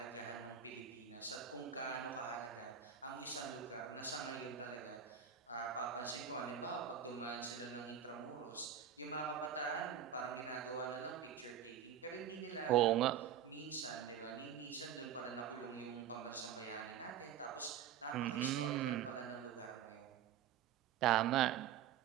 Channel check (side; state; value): left; quieter; 8.9 dB